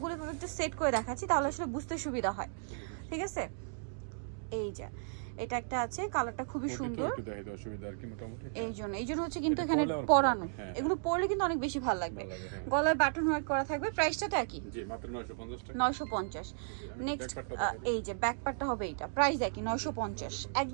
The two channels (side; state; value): left; silent; digital silence